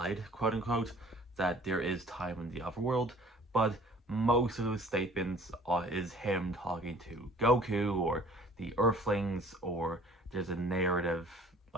quote unquote, that there is time in the Otherworld, but most of those statements is him talking to Goku or the Earthlings, or there's a narrative,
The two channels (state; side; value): normal; both; correlation 0.51